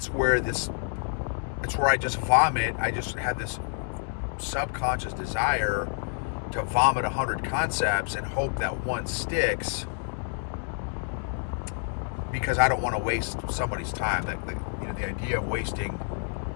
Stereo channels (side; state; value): right; silent; digital silence